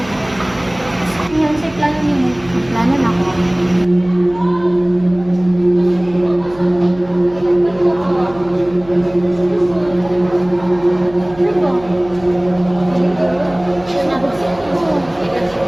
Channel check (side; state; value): right; noise; hum, 21 dB below the sound